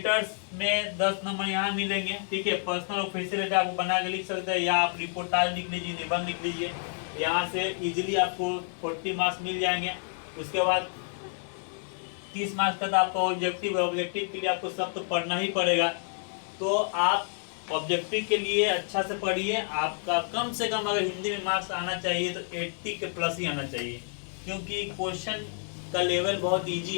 में 10 नंबर यहाँ मिलेंगे। ठीक है, पर्सनल और फेसियल लेटर आपको बना के लिख सकते हैं, या आप रिपोर्टाज लिख लीजिए, निबंध लिख लीजिए, यहाँ से इजीली आपको 40 मार्क्स मिल जाएंगे। उसके बाद 30 मार्क्स तक आपका ऑब्जेक्टिव है। ऑब्जेक्टिव के लिए आपको सब तो पढ़ना ही पड़ेगा, तो आप ऑब्जेक्टिव के लिए अच्छा से पढ़िए। आपका कम से कम अगर हिंदी में मार्क्स आना चाहिए तो 80 के प्लस ही आना चाहिए, क्योंकि क्वेश्चन का लेवल बहुत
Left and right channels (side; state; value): right; silent; digital silence